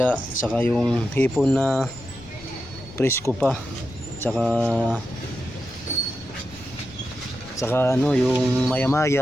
saka yung hipon na presko pa, saka ano, yung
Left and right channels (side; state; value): left; noise; rumble, 22 dB below the sound